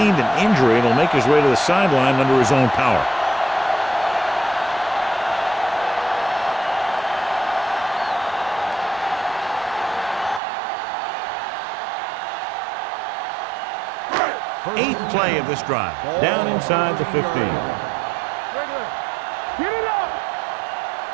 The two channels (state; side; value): drops out; left; at 10.4 s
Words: an injury and will make his way to the sideline under his own power. Eighth play of this drive. Down inside the 15. Get it up.